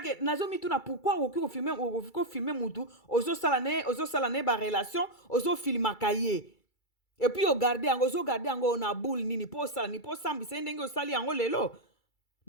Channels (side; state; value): right; late; 2.3 ms